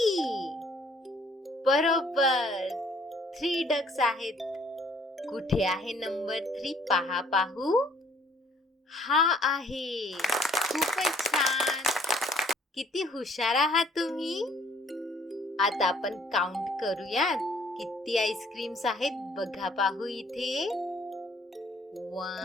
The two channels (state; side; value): normal; both; correlation 0.60